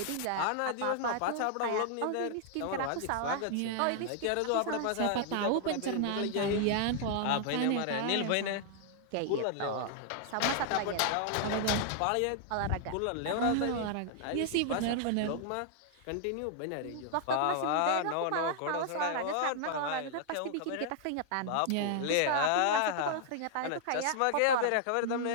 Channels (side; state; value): both; different; correlation -0.01